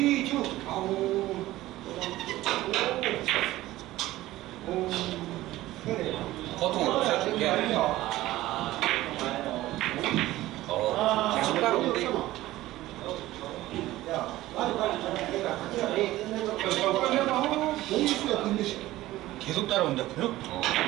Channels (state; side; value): quieter; left; 16.4 dB